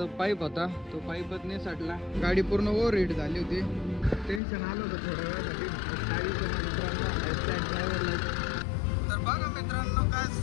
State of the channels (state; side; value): drops out; right; at 4.4 s